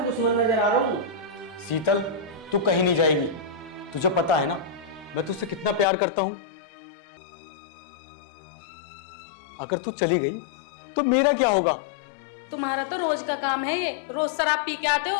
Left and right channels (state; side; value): drops out; right; at 5.9 s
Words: दुश्मन नजर आ रहा हूँ। शीतल तू कहीं नहीं जाएगी, तुझे पता है ना मैं तुझसे कितना प्यार करता हूं। अगर तू चली गई तो मेरा क्या होगा? तुम्हारा तो रोज का काम है ये, रोज शराब पी के आते हो,